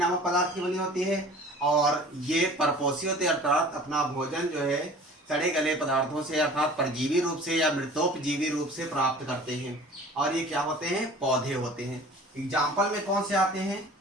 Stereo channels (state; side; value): normal; both; correlation 0.45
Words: पदार्थ की बनी होती है, और ये परपोषी होते हैं, अर्थात अपना भोजन जो है सड़े गले पदार्थों से अर्थात परजीवी रूप से या मृतोपजीवी रूप से प्राप्त करते हैं, और ये क्या होते हैं, पौधे होते हैं। एग्जाम्पल में कौन से आते हैं